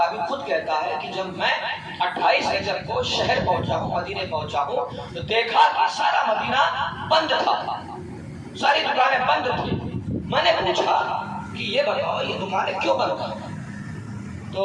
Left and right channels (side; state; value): both; identical; correlation 1.00